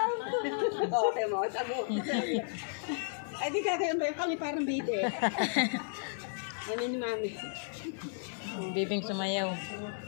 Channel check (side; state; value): right; silent; 55 dB below the other